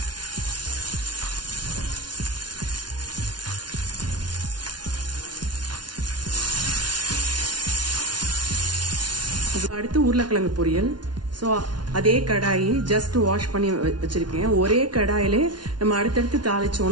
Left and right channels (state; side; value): late; left; 0.70 ms